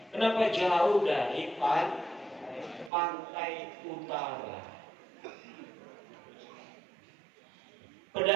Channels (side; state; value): left; drops out; at 2.9 s